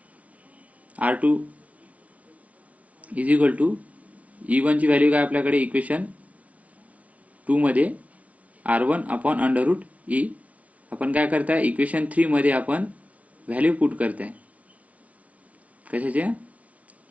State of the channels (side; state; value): left; late; 0.067 ms